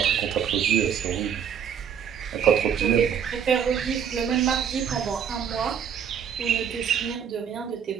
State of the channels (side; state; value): left; quieter; 8.1 dB